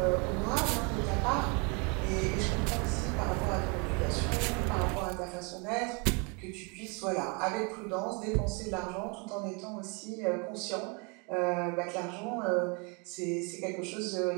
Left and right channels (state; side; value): quieter; left; 32.7 dB